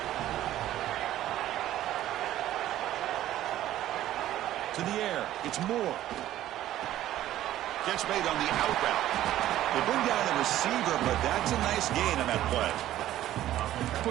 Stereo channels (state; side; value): quieter; left; 13.3 dB